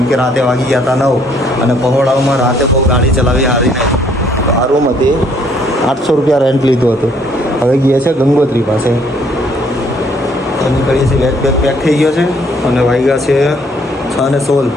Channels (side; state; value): both; normal; correlation 0.65